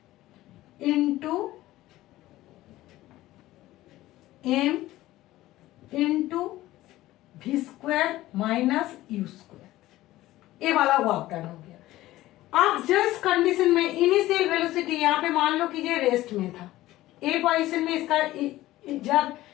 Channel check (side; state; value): right; quieter; 16.2 dB